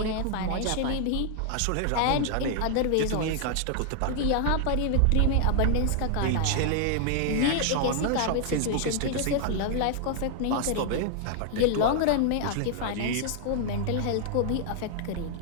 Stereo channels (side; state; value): both; different; correlation 0.00